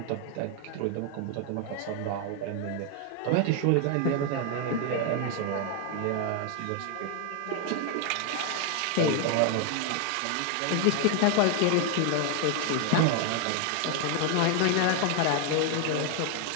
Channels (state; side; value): different; both; correlation 0.00